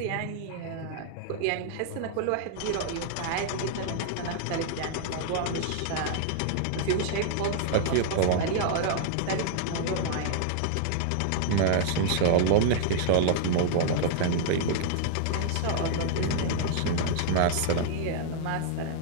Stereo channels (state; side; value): different; both; correlation -0.01